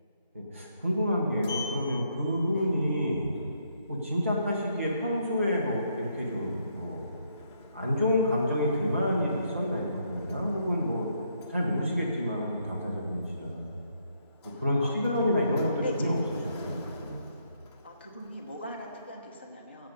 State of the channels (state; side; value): inverted; both; correlation -0.73